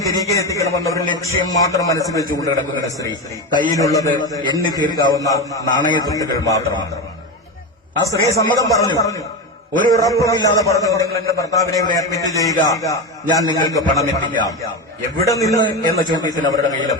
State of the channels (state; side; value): normal; both; correlation 0.17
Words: തിരികെ എത്തിക്കണമെന്ന ഒരു ലക്ഷ്യം മാത്രം മനസ്സിൽ വെച്ചുകൊണ്ട് കിടക്കുന്ന സ്ത്രീ കയ്യിലുള്ളത് എണ്ണി തീർക്കാവുന്ന നാണയത്തുട്ടുകൾ മാത്രമാണ്. ആ സ്ത്രീ സമ്മതം പറഞ്ഞു. ഒരു ഉറപ്പുമില്ലാതെ പറഞ്ഞു, നിങ്ങൾ എന്റെ ഭർത്താവിനെ ഇവിടെ അഡ്മിറ്റ് ചെയ്യുക, ഞാൻ നിങ്ങൾക്ക് പണം എത്തിക്കാം. എവിടെ നിന്ന് എന്ന ചോദ്യത്തിന് അവരുടെ കയ്യിൽ